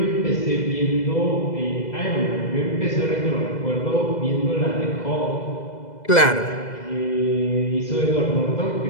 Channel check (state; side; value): late; right; 2.0 ms